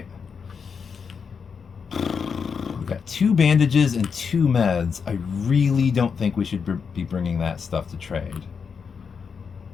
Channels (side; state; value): right; quieter; 6.0 dB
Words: We've got 2 bandages and 2 meds. I really don't think we should be bringing that stuff to trade.